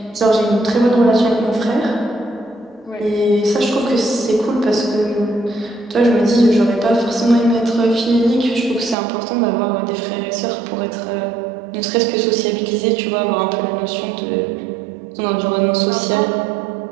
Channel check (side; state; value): left; drops out; at 9.0 s